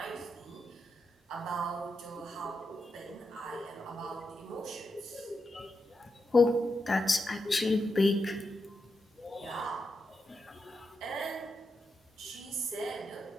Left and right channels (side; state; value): both; normal; correlation 0.86